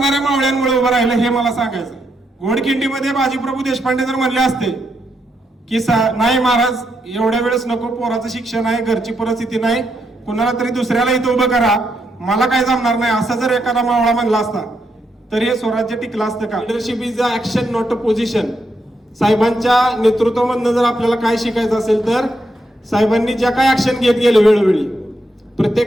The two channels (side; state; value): both; normal; correlation 0.80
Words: मावळ्यांमुळे उभं राहिलं, हे मला सांगायचं. घोडखिंडीमध्ये बाजीप्रभू देशपांडे जर म्हणले असते की नाही महाराज एवढ्या वेळेस नको, पोराचं शिक्षण आहे, घरची परिस्थिती नाही, कुणाला तरी दुसऱ्याला इथं उभं करा, मला काय जमणार नाही, असं जर एखादा मावळा म्हणला असता तर हे स्वराज्य टिकलं असतं का? Leadership is a action not a position. साहेबांच्या नेतृत्वामधनं जर आपल्याला काय शिकायचं असेल तर साहेबांनी ज्या काय ऍक्शन घेत गेले वेळोवेळी,